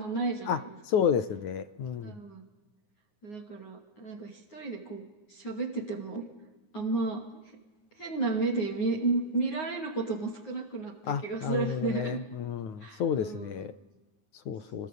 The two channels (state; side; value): late; right; 9.5 ms